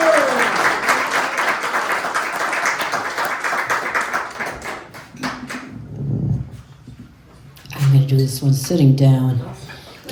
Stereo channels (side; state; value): both; identical; correlation 1.00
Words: I'm going to do this one sitting down.